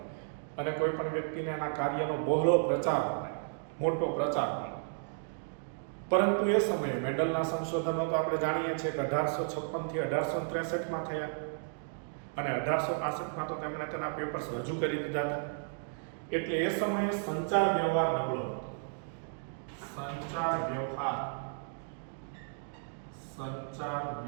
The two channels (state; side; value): silent; left; digital silence